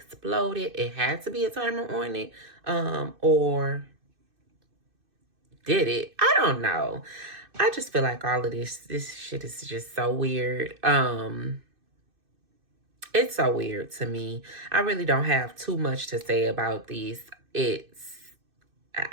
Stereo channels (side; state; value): left; late; 2.6 ms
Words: it had to be a timer on it. Or did it? I don't know. I just feel like all of this shit is just so weird. It's so weird to me. I really don't have too much to say about these.